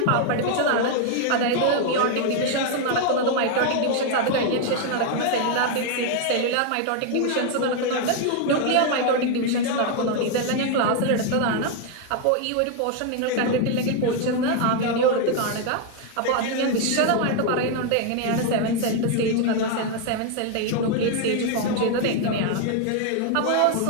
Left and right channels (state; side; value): different; both; correlation 0.01